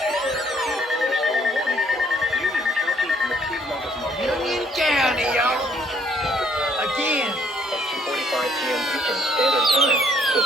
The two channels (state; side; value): normal; both; correlation 0.65